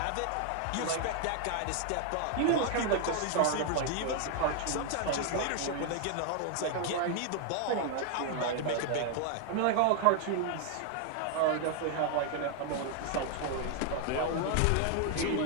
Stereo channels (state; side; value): different; both; correlation 0.00